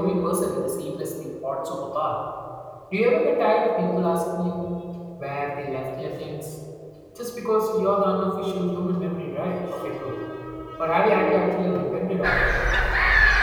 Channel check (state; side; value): identical; both; correlation 1.00